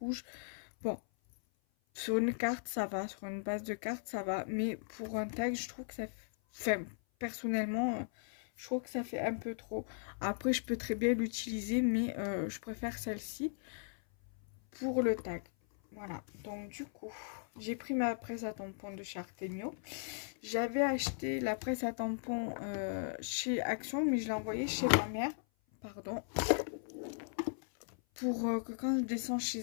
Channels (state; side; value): silent; right; 53 dB below the other